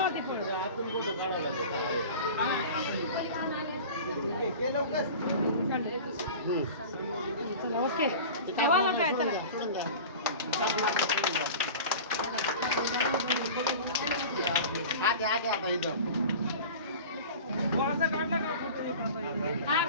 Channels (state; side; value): inverted; both; correlation -0.36